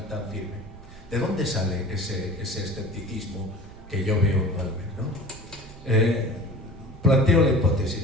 firme. ¿De dónde sale ese escepticismo que yo veo en Balmes, ¿no? Planteo la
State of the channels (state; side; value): noise; right; rumble, 18 dB below the sound